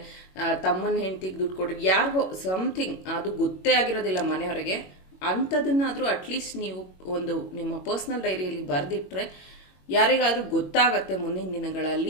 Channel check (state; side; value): late; right; 21 ms